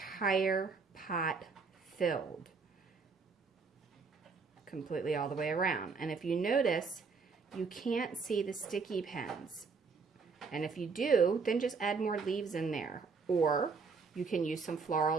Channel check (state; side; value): quieter; left; 4.8 dB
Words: pot filled. Completely all the way around. And if you notice, you can't see the sticky pins. And if you do, then just add more leaves in there. Or you can use some